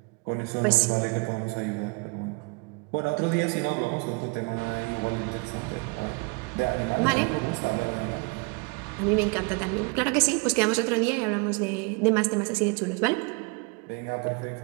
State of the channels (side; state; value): left; quieter; 30.7 dB